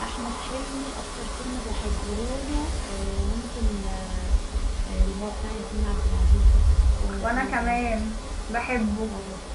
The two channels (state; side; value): identical; both; correlation 1.00